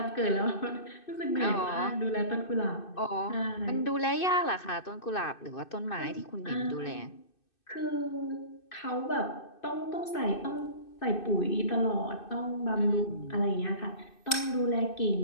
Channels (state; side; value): late; right; 2.6 ms